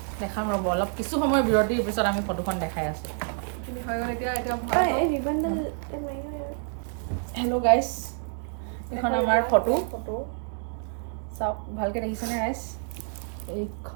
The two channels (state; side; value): silent; left; 60 dB below the other